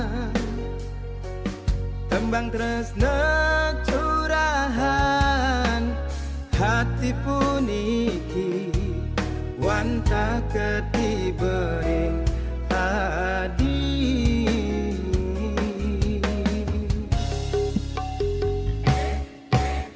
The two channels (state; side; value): identical; both; correlation 1.00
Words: tembang tresna curahan hati puniki wanta ketibering hadi